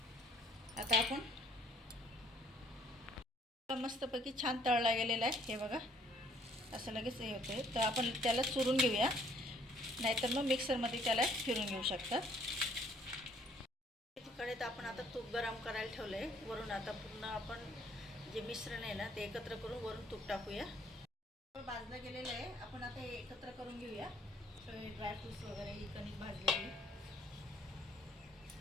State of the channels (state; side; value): normal; both; correlation 0.61